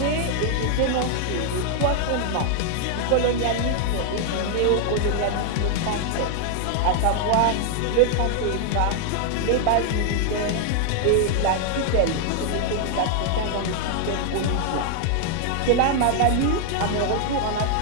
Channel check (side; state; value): both; different; correlation 0.00